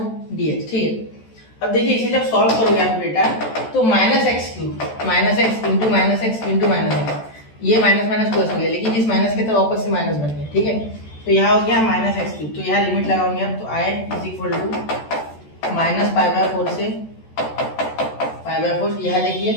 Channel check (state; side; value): late; right; 14 ms